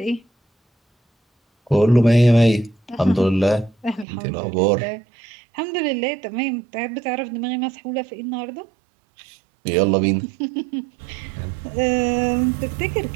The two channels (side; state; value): left; drops out; at 4.0 s